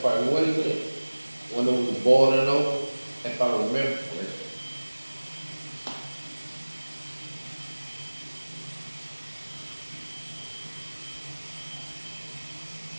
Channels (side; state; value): both; inverted; correlation -1.00